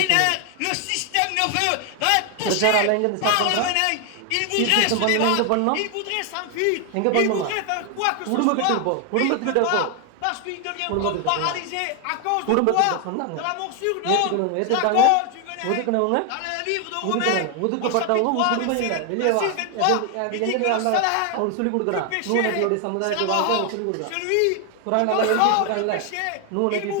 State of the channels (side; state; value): both; different; correlation 0.01